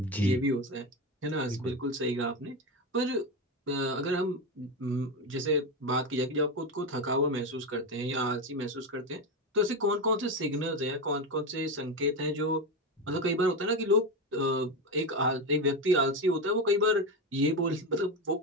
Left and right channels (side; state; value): both; normal; correlation 0.15